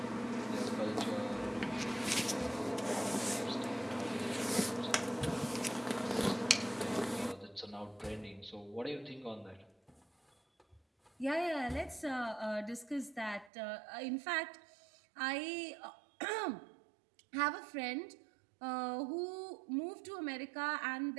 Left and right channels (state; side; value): drops out; left; at 13.5 s